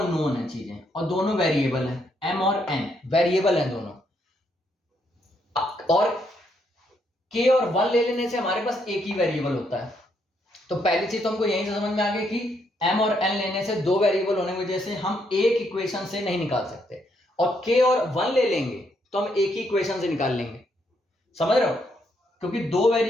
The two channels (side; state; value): both; normal; correlation 0.75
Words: है चीजें और दोनों वेरिएबल हैं, m और n वेरिएबल हैं दोनों, और k और 1 ले लेने से हमारे पास एक ही वेरिएबल होता है। तो पहली चीज तो हमको यहीं से समझ में आ गई कि m और n लेने से दो वेरिएबल होने की वजह से हम एक इक्वेशन से नहीं निकाल सकते, और k और 1 ले लेंगे तो हम एक ही इक्वेशन से निकाल लेंगे। समझ रहे हो, क्योंकि दो